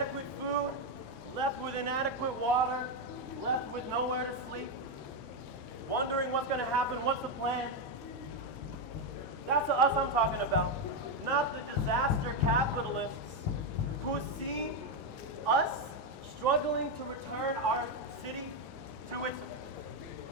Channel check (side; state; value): both; normal; correlation 0.05